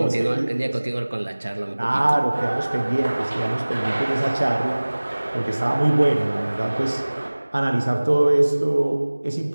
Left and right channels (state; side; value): inverted; both; correlation -1.00